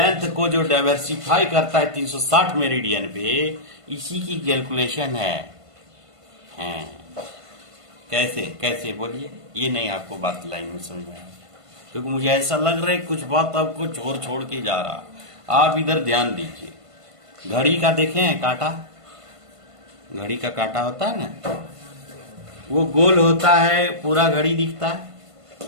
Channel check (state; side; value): late; left; 1.5 ms